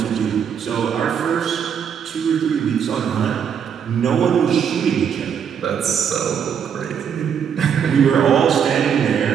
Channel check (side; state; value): left; quieter; 7.8 dB